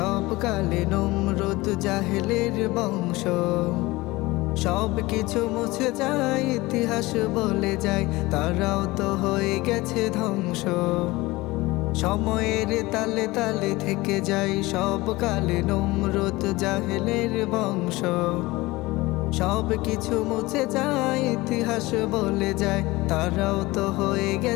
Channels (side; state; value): right; quieter; 20.7 dB